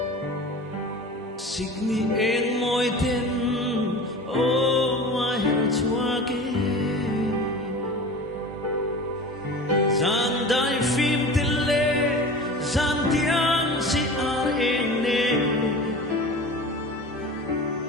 signi eng moi ten o ma her chua ke zan dai phim tele zan tiang si ar eng ne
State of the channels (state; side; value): normal; both; correlation 0.36